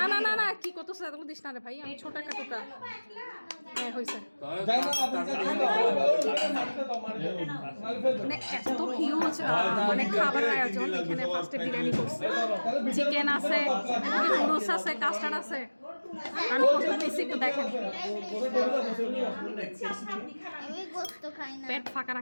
না না না, কি করতেছ? এত দিস না রে ভাই, আমি ছোট একটা টুকরা। হ্যাঁ হয়েছে। মানে এত হিউজ মানে খাবার আয়োজন। এখানে ফার্স্টে বিরিয়ানি করছে, চিকেন আছে, নুডলস আছে, কাস্টার্ড আছে। আমি প্রথমে নিচ্ছি, একটু দেখেন। পেট ফাঁকা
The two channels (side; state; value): both; inverted; correlation -1.00